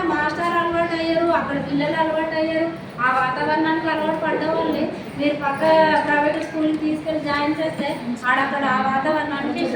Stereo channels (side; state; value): both; identical; correlation 1.00